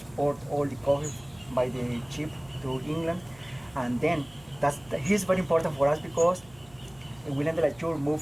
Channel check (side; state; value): right; noise; hum, 24 dB below the sound